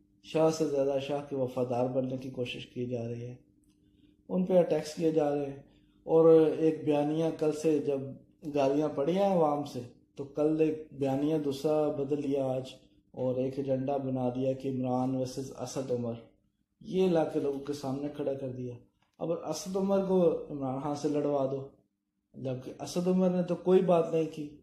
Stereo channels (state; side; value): identical; both; correlation 1.00